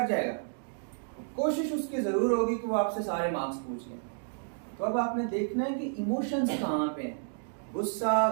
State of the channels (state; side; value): silent; left; digital silence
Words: जाएगा, कोशिश उसकी जरूर होगी कि वो आपसे सारे मार्क्स पूछ ले। तो अब आपने देखना है कि इमोशंस कहाँ पे हैं, गुस्सा,